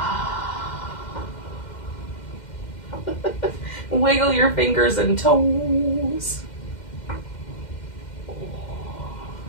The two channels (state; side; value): late; right; 2.1 ms